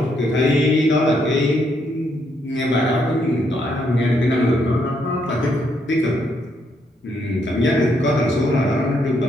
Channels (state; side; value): normal; both; correlation 0.74